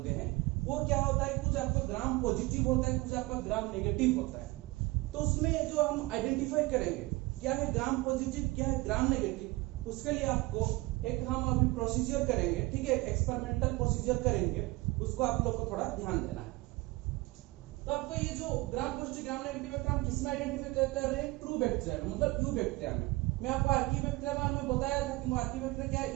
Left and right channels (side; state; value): left; quieter; 21.6 dB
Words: हैं, वो क्या होता है, कुछ आपका ग्राम पॉजिटिव होता है, कुछ आपका ग्राम नेगेटिव होता है। तो उसमें जो हम आइडेंटिफाई करेंगे क्या है ग्राम पॉजिटिव, क्या है ग्राम नेगेटिव, उसके लिए आपको एक हम अभी प्रोसीजर करेंगे, ठीक है, एक्सपेरिमेंटल प्रोसीजर करेंगे, उसको आप लोग को थोड़ा ध्यान देना है। तो आपको ये जो ग्राम पॉजिटिव ग्राम नेगेटिव बैक्टीरिया हम किसमें आइडेंटिफाई कर रहे हैं, ट्रू बैक्टीरिया में, मतलब यू बैक्टीरिया में। मैं आपको आर्कीबैक्टीरिया बारे में बताया था कि आर्कीबैक्टीरिया क्या